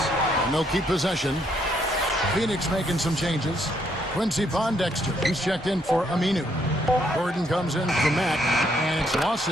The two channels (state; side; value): normal; both; correlation 0.72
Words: And they'll keep possession. Phoenix making some changes. Quincy Pondexter, he's checked in for Aminu. Gordon comes in for Matt, and it's